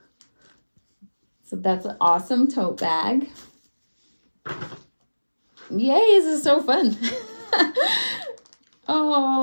So that's an awesome tote bag. Yay, this is so fun.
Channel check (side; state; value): both; inverted; correlation -1.00